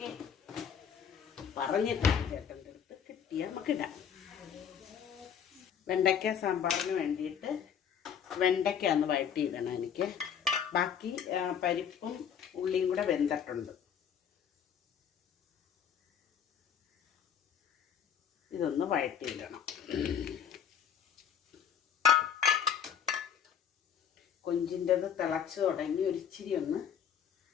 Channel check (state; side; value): quieter; right; 8.1 dB